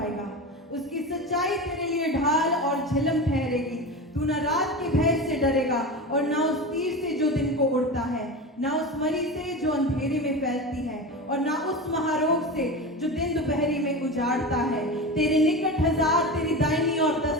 उसकी सच्चाई तेरे लिए ढाल और झिलम ठहरेगी। तू न रात के भय से डरेगा और न उस तीर से जो दिन को उड़ता है, न उस मरी से जो अंधेरे में फैलती है, और न उस महारोग से जो दिन दोपहरी में उजाड़ता है। तेरे निकट 1000 तेरी दाहिनी और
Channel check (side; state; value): both; normal; correlation 0.26